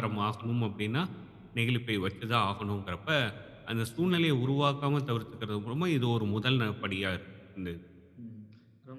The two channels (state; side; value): identical; both; correlation 1.00